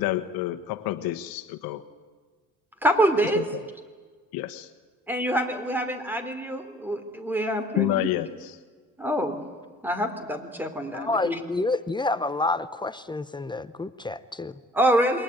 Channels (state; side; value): normal; both; correlation 0.51